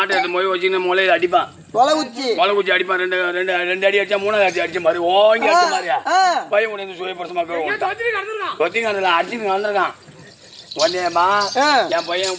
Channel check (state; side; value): identical; both; correlation 1.00